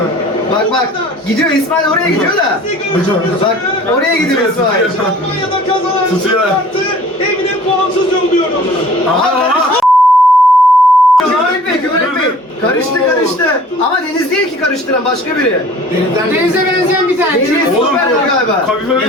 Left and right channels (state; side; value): normal; both; correlation 0.49